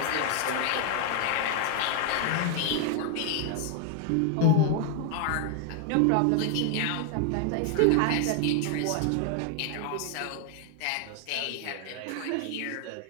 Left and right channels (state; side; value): different; both; correlation 0.00